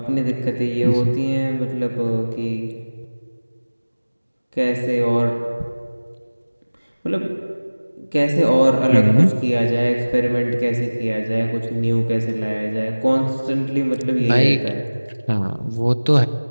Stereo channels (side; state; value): both; inverted; correlation -1.00